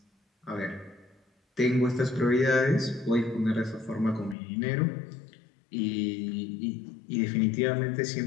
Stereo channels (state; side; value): drops out; right; at 4.4 s